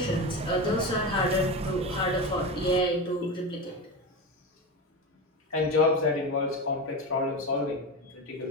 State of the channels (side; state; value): both; normal; correlation 0.21